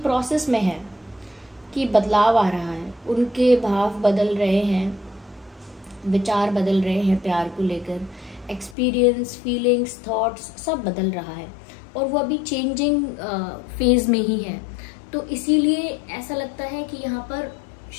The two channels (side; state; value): right; drops out; at 8.8 s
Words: प्रोसेस में है कि बदलाव आ रहा है, उनके भाव बदल रहे हैं, विचार बदल रहे हैं, प्यार को लेकर एक्सपीरियंस, फीलिंग्स, थॉट्स सब बदल रहा है, और वो अभी चेंजिंग फेज में ही है। तो इसीलिए ऐसा लगता है कि यहाँ पर